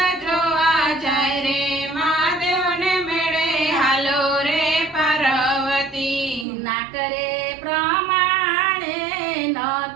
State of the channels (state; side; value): drops out; left; at 6.5 s